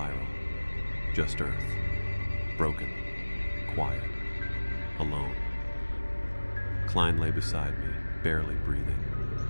just Earth, broken, quiet, alone. Klein lay beside me, barely breathing.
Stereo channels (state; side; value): inverted; both; correlation -1.00